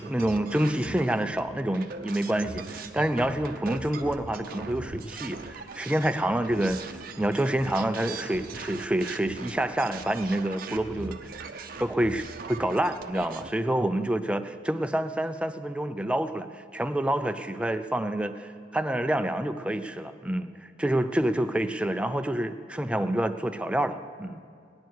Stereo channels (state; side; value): normal; both; correlation 0.89